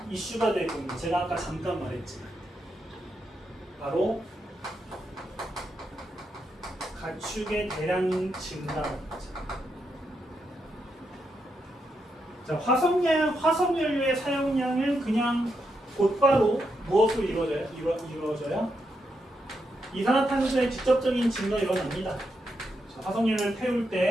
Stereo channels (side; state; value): both; normal; correlation 0.82